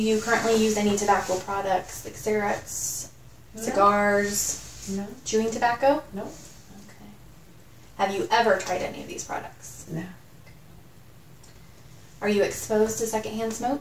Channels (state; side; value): identical; both; correlation 1.00